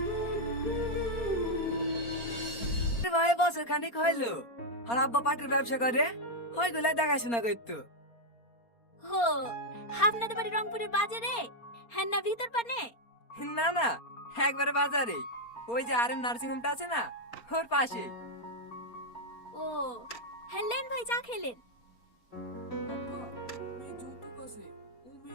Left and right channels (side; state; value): right; late; 4.3 ms